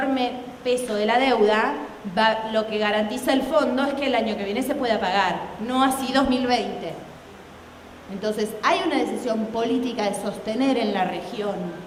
peso de la deuda, lo que garantiza el fondo es que el año que viene se pueda pagar, no así 2020. Entonces hay una decisión política de sostener en la región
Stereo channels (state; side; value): identical; both; correlation 1.00